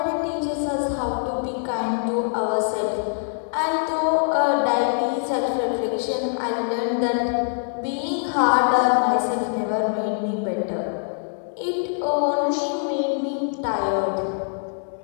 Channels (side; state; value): right; silent; digital silence